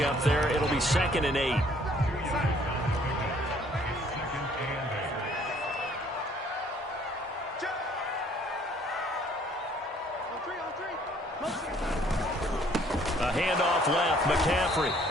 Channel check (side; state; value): both; normal; correlation 0.60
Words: there. It'll be 2nd and 8. A handoff left, McCaffrey,